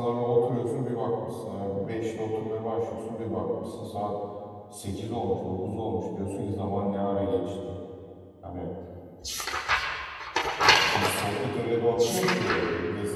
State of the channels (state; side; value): identical; both; correlation 1.00